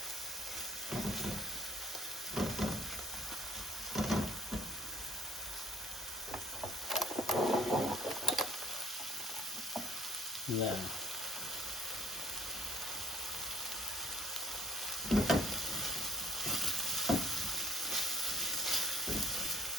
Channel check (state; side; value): normal; both; correlation 0.59